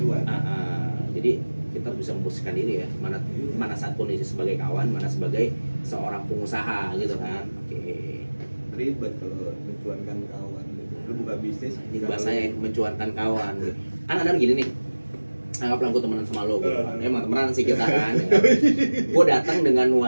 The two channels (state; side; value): inverted; both; correlation -1.00